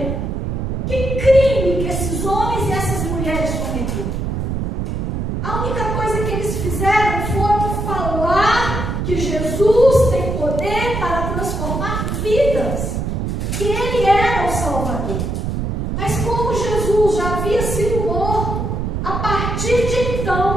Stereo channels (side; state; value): right; noise; rumble, 2 dB below the sound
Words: Que crime que esses homens e essas mulheres cometeram? A única coisa que eles fizeram foi falar que Jesus tem poder para transformar vidas, que Ele era o Salvador. Mas como Jesus já havia sido morto, a partir de